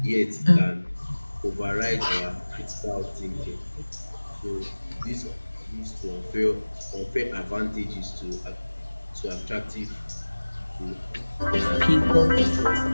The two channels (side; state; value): both; inverted; correlation -1.00